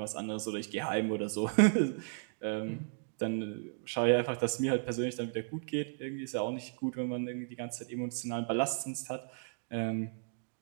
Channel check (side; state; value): left; silent; digital silence